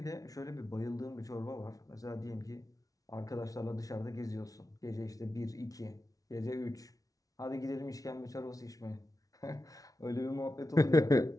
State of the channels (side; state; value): right; late; 0.18 ms